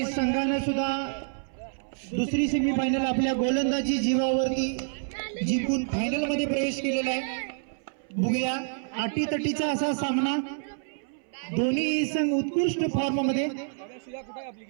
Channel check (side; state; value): left; silent; 60 dB below the other